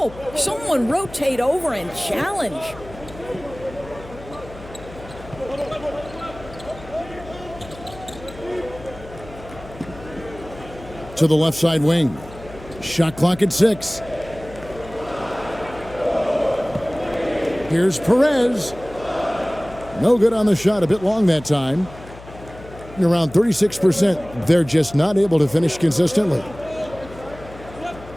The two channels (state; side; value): noise; left; hum, 17 dB below the sound